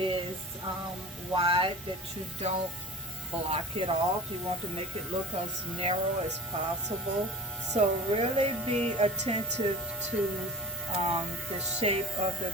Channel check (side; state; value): both; normal; correlation 0.35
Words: wide, that you don't block it off. You want to make it look as narrow as possible. So really be attentive to the shape of the